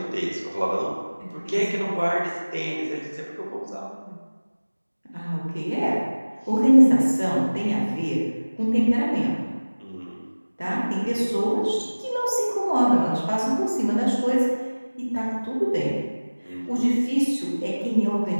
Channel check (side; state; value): both; inverted; correlation -1.00